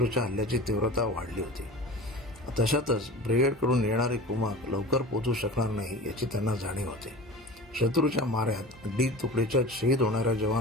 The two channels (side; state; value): both; normal; correlation 0.35